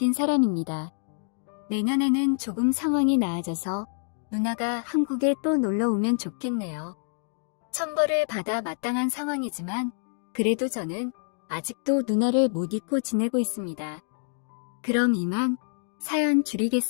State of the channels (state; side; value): silent; right; digital silence